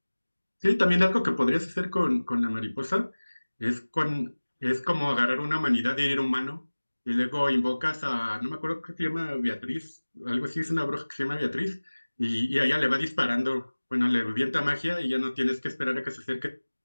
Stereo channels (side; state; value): both; inverted; correlation -1.00